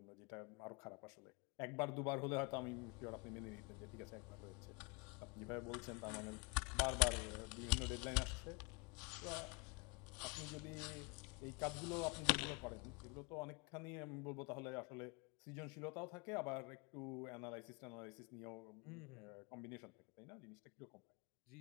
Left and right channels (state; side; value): quieter; right; 29.1 dB